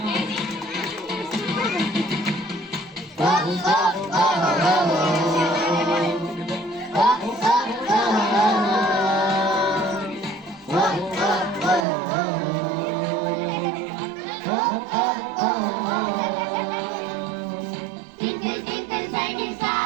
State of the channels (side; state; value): left; drops out; at 11.9 s